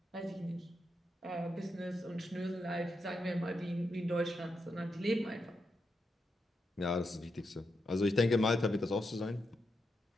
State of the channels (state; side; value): normal; both; correlation 0.84